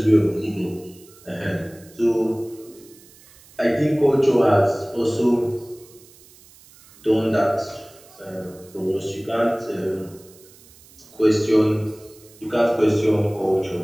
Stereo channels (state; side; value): noise; right; hiss, 25 dB below the sound